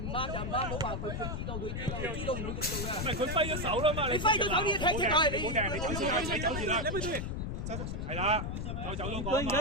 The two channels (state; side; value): noise; left; rumble, 3 dB below the sound